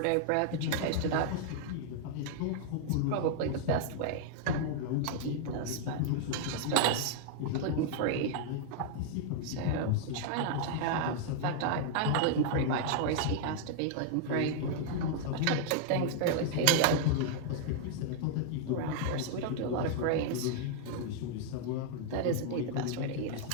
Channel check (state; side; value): different; both; correlation -0.01